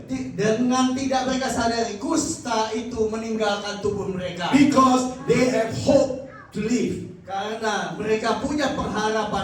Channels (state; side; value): identical; both; correlation 1.00